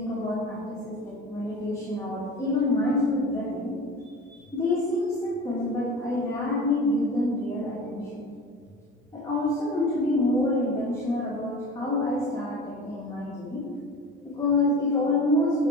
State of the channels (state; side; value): normal; both; correlation 0.35